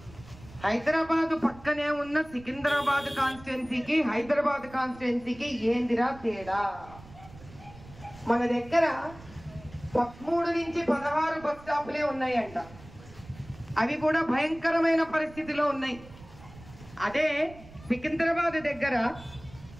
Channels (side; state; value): right; noise; rumble, 20 dB below the sound